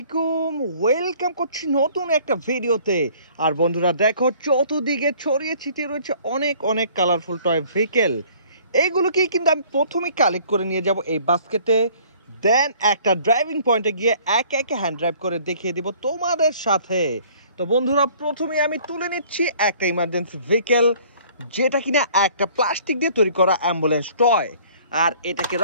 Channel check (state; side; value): inverted; both; correlation -0.54